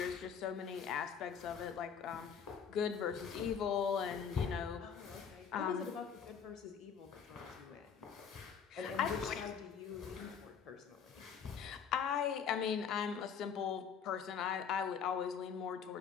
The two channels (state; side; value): quieter; right; 7.1 dB